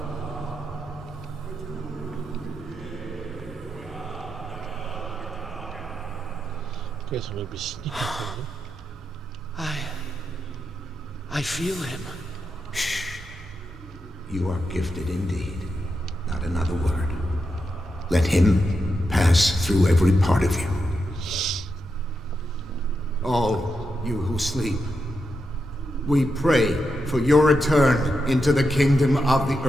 Guess I'm going to be sneaking from them. I feel him. You are gifted indeed. Not another word. Let him pass through every part of you. All you who sleep, we pray for your return into the kingdom of the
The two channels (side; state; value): both; normal; correlation 0.86